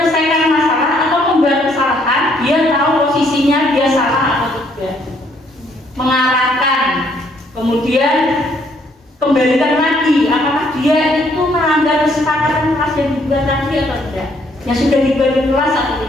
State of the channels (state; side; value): normal; both; correlation 0.67